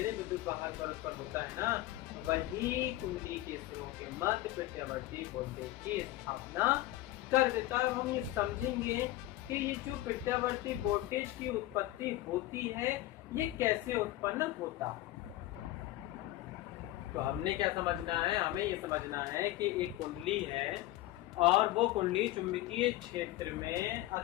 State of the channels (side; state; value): right; quieter; 16.3 dB